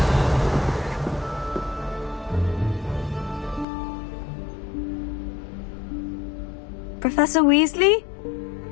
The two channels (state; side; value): drops out; right; at 3.7 s